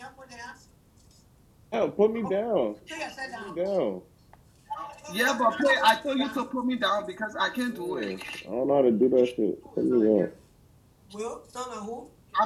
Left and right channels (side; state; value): both; identical; correlation 1.00